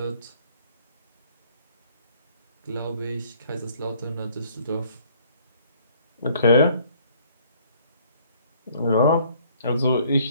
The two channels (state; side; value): inverted; both; correlation -0.60